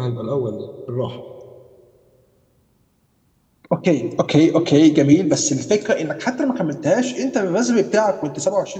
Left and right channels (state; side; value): identical; both; correlation 1.00